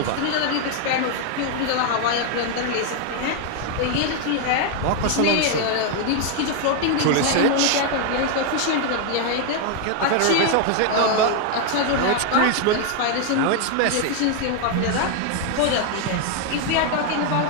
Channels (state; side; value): different; both; correlation 0.01